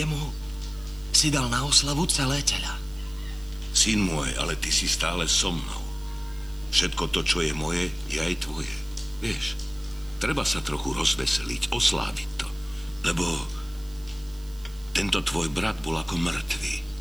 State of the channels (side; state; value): right; noise; hiss, 23 dB below the sound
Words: si dal na oslavu celé teľa. Syn môj, ale ty si stále so mnou. Všetko to, čo je moje, je aj tvoje. Vieš, treba sa trochu rozveseliť, osláviť to. Lebo tento tvoj brat bol ako mŕtvý